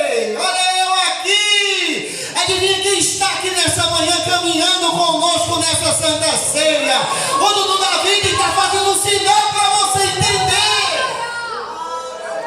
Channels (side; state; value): both; identical; correlation 1.00